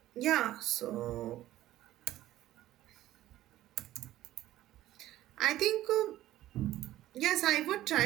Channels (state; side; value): quieter; left; 14.5 dB